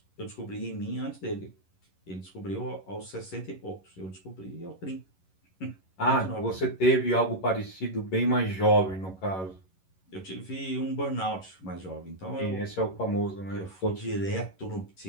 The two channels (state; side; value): late; right; 11 ms